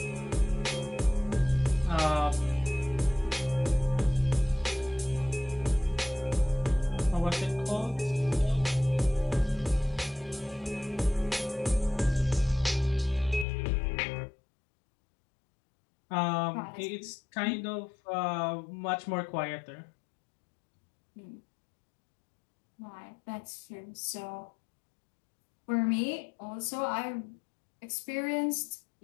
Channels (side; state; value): right; drops out; at 13.5 s